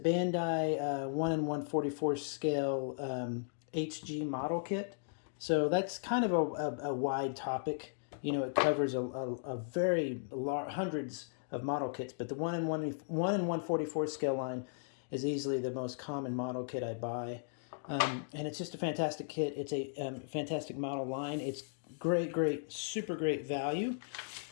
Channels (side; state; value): right; silent; digital silence